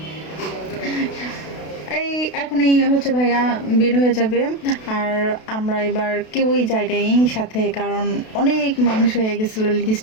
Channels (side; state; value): right; late; 32 ms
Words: এই এখনই হচ্ছে ভাইয়া বের হয়ে যাবে, আর আমরা এবার কেউই যাই নাই সাথে, কারণ অনেক মানুষ হয়ে গেছিলো